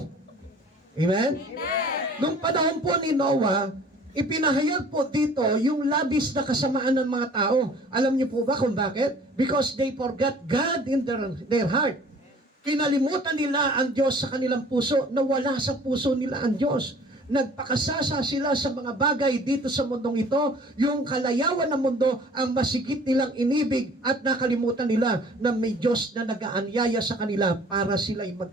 Amen? Amen. Nung panahon po ni Noah, ipinahayag po dito yung labis na kasamaan ng mga tao. Alam niyo po ba kung bakit? Because they forgot God in their heart. Kinalimutan nila ang Diyos sa kanilang puso, nawala sa puso nila ang Diyos. Nagpakasasa sila sa mga bagay dito sa mundong ito, yung kalayawan ng mundo ang masigit nilang inibig at nakalimutan nila na may Diyos na nag-aanyaya sa kanila para sila'y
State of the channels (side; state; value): both; normal; correlation 0.50